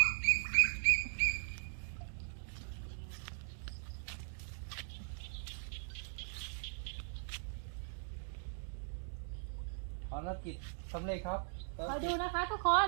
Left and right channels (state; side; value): silent; left; digital silence